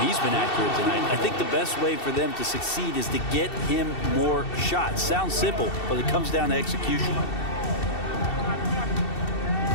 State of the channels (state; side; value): late; right; 2.7 ms